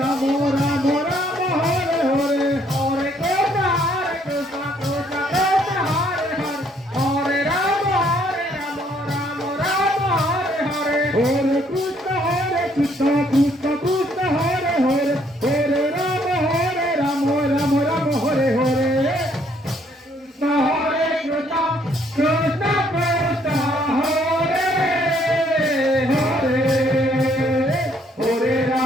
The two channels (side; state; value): both; normal; correlation 0.67